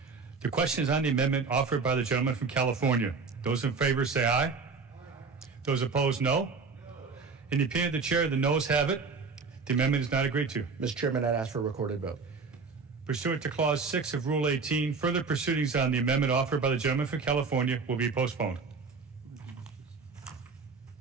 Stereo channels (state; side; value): quieter; left; 4.7 dB